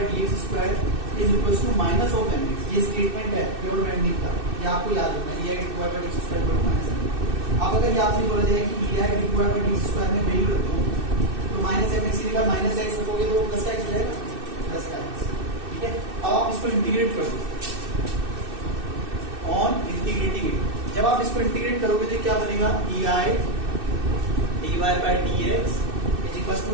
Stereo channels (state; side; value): late; left; 2.6 ms